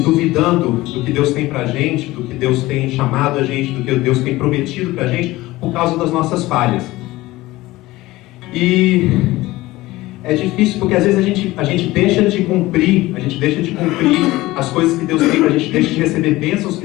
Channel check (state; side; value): quieter; right; 18.5 dB